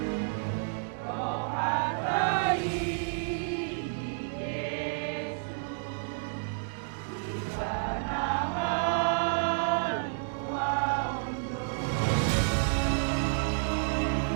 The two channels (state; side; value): silent; left; digital silence